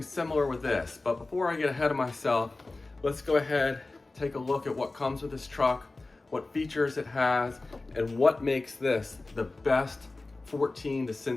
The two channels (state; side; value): quieter; right; 3.2 dB